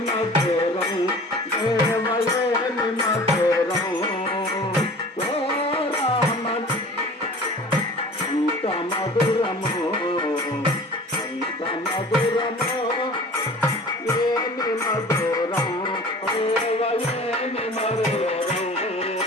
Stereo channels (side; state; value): both; normal; correlation 0.43